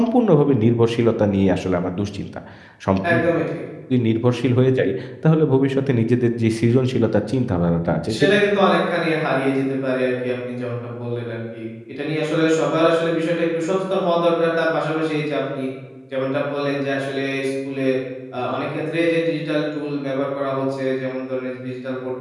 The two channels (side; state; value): both; identical; correlation 1.00